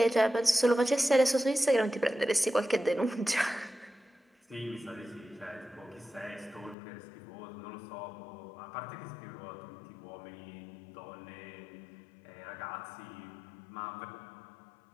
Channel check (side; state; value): right; drops out; at 6.8 s